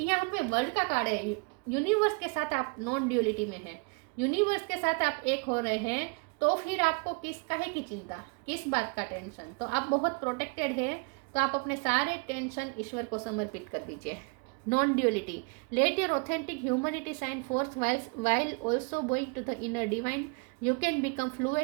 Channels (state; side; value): quieter; left; 34.3 dB